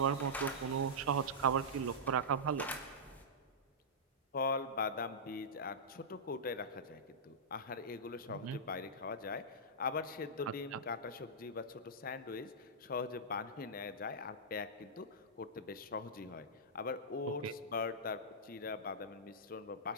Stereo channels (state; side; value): normal; both; correlation -0.13